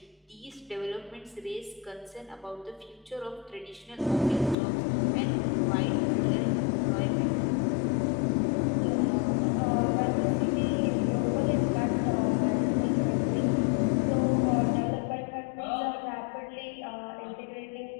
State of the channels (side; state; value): right; drops out; at 4.5 s